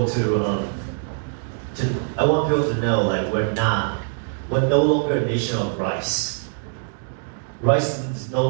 I want people to know like we're no longer a nation of rice. Rice is no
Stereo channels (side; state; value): left; silent; digital silence